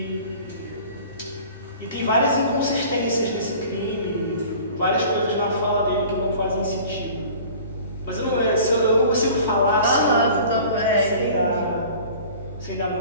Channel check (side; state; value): both; inverted; correlation -0.44